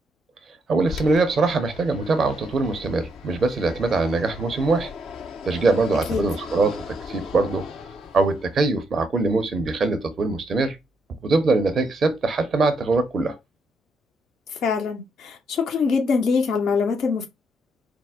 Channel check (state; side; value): normal; both; correlation 0.77